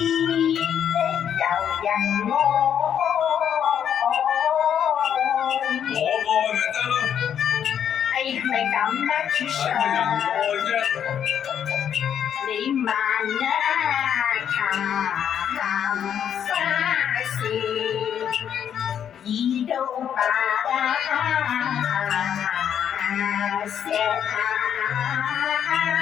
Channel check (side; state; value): right; quieter; 8.9 dB